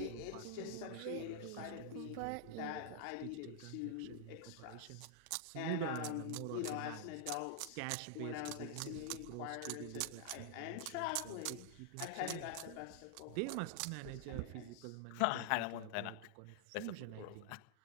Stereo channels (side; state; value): both; different; correlation 0.00